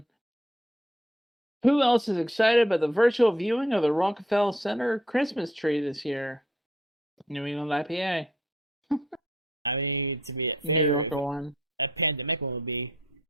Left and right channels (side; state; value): both; normal; correlation 0.66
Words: Who else is excited about the virtual viewing of the Rockefeller Center Christmas tree this year? New England IPA. I mean, to be fair, New Yorker one. A pandemic one would be